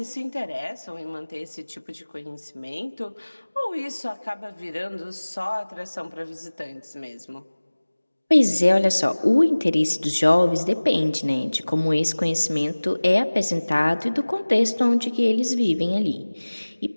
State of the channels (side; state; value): both; inverted; correlation -1.00